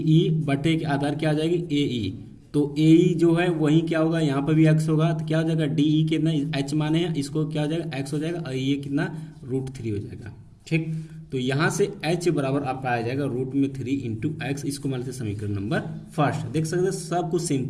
बटे के आधार क्या आ जाएगी AE। तो AE जो है वही क्या होगा, यहाँ पर भी x होगा तो क्या हो जाएगा DE कितना h माने हैं, इसको क्या हो जाएगा x हो जाएगा और ये कितना √3 हो जाएगा, ठीक। तो यहाँ से h बराबर आपका आ जाएगा √3 इंटू एक्स। इसको मान लेते समीकरण नंबर फर्स्ट। देख सकते हैं सब कुछ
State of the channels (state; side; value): identical; both; correlation 1.00